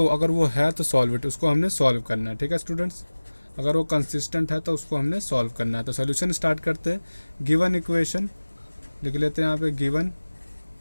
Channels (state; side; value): inverted; both; correlation -1.00